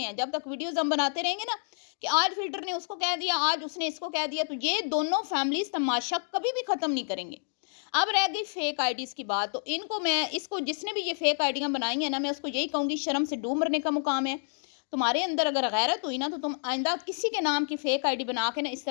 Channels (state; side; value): silent; right; digital silence